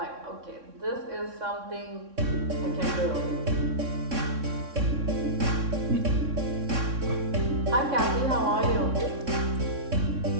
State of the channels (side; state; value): left; late; 3.6 ms